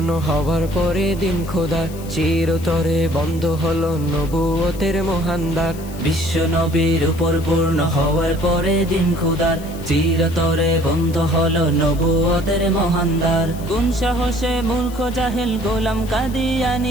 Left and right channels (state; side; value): noise; left; hiss, 19 dB below the sound